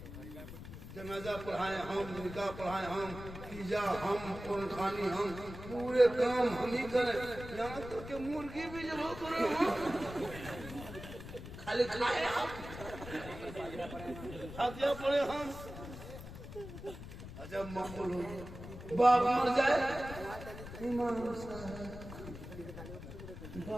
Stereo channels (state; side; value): noise; left; rumble, 12 dB below the sound